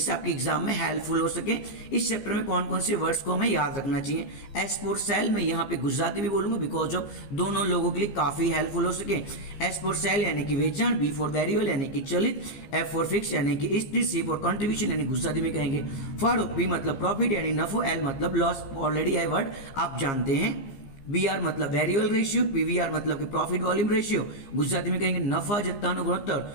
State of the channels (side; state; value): right; late; 15 ms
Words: आपके एग्जाम में हेल्पफुल हो सके। इस चैप्टर में कौन कौन से वर्ड्स को हमें याद रखना चाहिए। एस फॉर सेल, मैं यहाँ पे गुजराती भी बोलूंगा, बिकॉज ऑफ दोनों लोगों के लिए काफी हेल्पफुल हो सके। एस फॉर सेल यानी कि वेचाण, बी फॉर वेरिएबल यानी कि चलित, एफ फॉर फिक्स यानी कि स्थिर, सी फॉर कंट्रीब्यूशन यानी गुजराती में कहेंगे फाड़ो, पी मतलब प्रॉफिट यानी नफो, एल मतलब लॉस, ऑलरेडी है वर्ड आप जानते हैं। बी आर मतलब वेरिएबल रेशियो, पीवीआर मतलब कि प्रॉफिट वॉल्यूम रेशियो, गुजराती में कहेंगे नफा जत्तानु